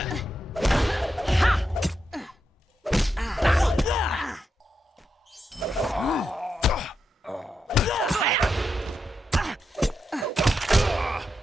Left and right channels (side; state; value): both; normal; correlation 0.85